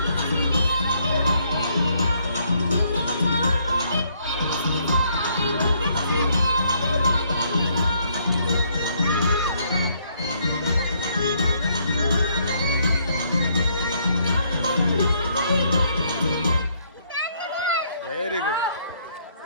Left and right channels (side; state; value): both; inverted; correlation -0.69